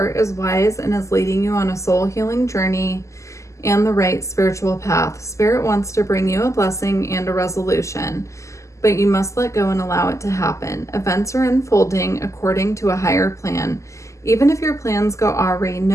is wise and is leading you on a soul healing journey and the right spiritual path. Spirit wants to bring you a blessing and a resolution, but you must let go and allow it to happen. Events are unfolding according to a higher plan. Even if your plans go awry,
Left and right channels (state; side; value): late; right; 0.15 ms